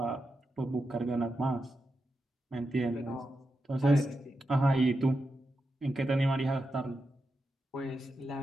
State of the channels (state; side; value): normal; both; correlation 0.88